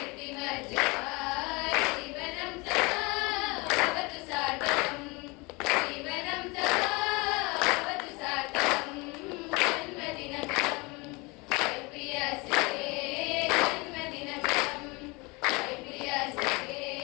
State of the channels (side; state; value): right; quieter; 26.3 dB